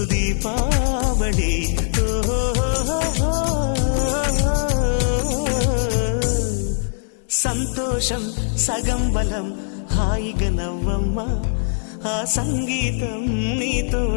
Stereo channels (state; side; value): silent; right; digital silence